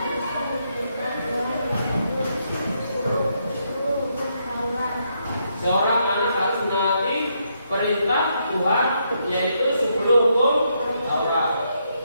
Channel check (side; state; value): both; inverted; correlation -0.77